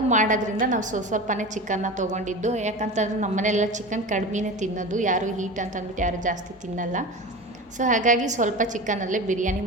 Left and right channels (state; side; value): normal; both; correlation 0.29